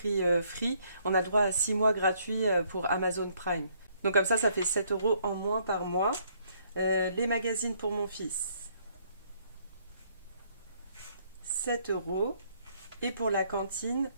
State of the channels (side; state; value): both; inverted; correlation -0.67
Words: Free, on a le droit à 6 mois gratuits pour Amazon Prime. Donc comme ça fait 7 euros en moins par mois. Les magazines pour mon fils, 7 euros. Et pour la cantine,